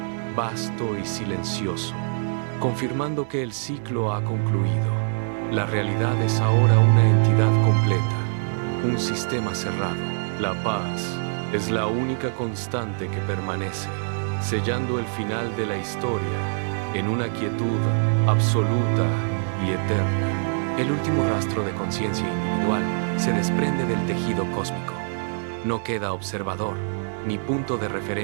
vasto y silencioso, confirmando que el ciclo ha concluido. La realidad es ahora una entidad completa, un sistema cerrado. La paz es la única constante que permanece, sellando el final de la historia en una quietud absoluta y eterna. El último rastro de conciencia individual se desprende del tejido cósmico. No queda observador, ni punto de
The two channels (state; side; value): silent; left; digital silence